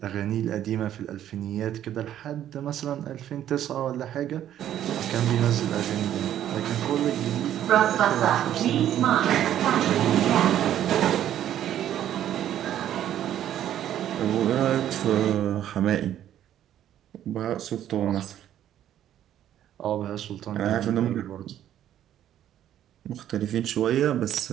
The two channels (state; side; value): quieter; left; 11.3 dB